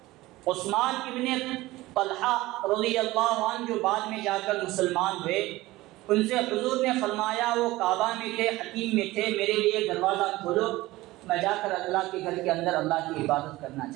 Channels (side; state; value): left; quieter; 18.5 dB